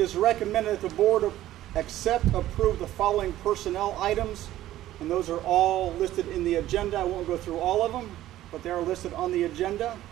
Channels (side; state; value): left; quieter; 14.1 dB